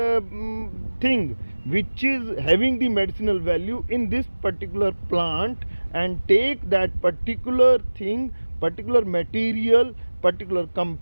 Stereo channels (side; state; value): both; inverted; correlation -1.00